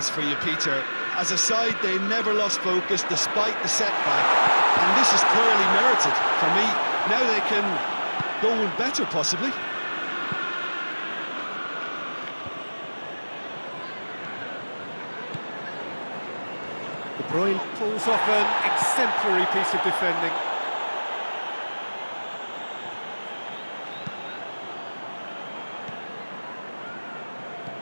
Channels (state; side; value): inverted; both; correlation -1.00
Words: for you, Peter. As a side, they never lost focus despite the setback. And this is clearly merited for me. Now they can go one better, possibly. De Bruyne pulls off an exemplary piece of defending.